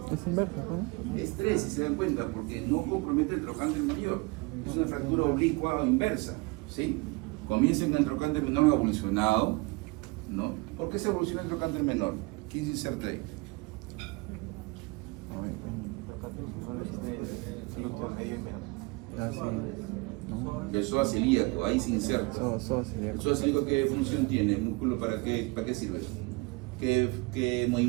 Es inversa, ¿no? Es 3, si se dan cuenta, porque no compromete el trocánter mayor. Es una fractura oblicua o inversa, ¿sí? Comienza en el trocánter menor evolucionado, ¿no? ¿Por qué se evoluciona el trocánter menor? ¿Quién se inserta ahí? El psoas ilíaco, ahí se inserta. ¿El psoas ilíaco qué función tiene? ¿El músculo para qué sirve? ¿Qué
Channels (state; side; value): quieter; left; 25.6 dB